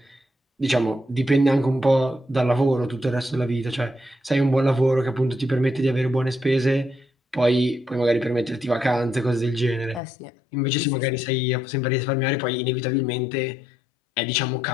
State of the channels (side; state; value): right; drops out; at 10.0 s